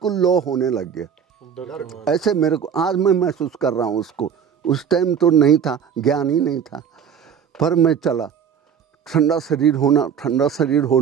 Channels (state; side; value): quieter; left; 7.6 dB